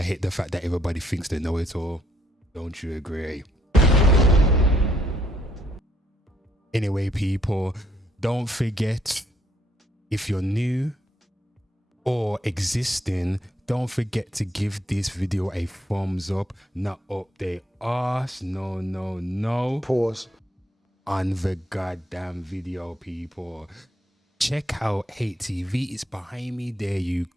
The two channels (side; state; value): both; normal; correlation 0.71